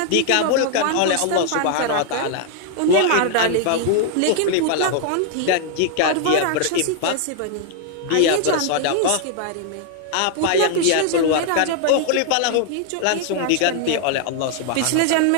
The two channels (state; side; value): different; both; correlation 0.00